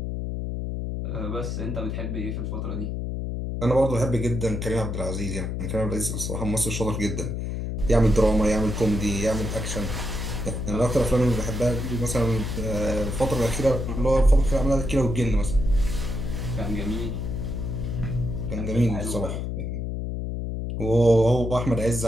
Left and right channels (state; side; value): noise; left; hum, 3 dB below the sound